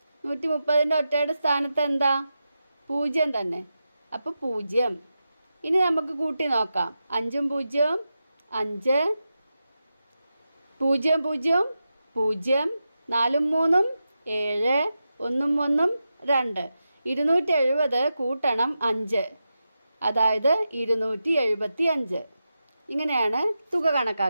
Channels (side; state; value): both; inverted; correlation -0.90